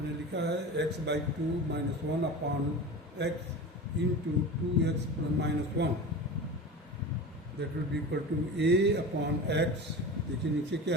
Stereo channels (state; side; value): normal; both; correlation 0.31